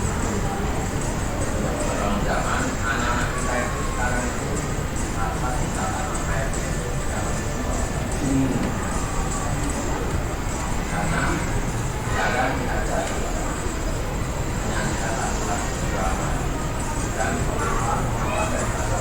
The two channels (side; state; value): both; identical; correlation 1.00